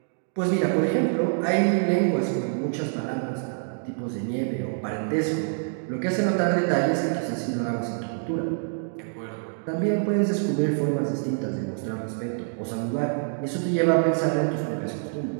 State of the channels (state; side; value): silent; left; digital silence